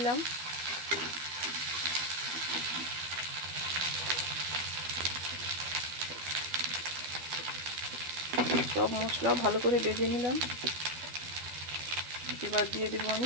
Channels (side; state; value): left; late; 12 ms